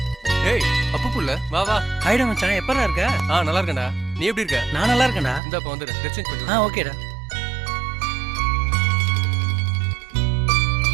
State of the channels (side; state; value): left; drops out; at 5.4 s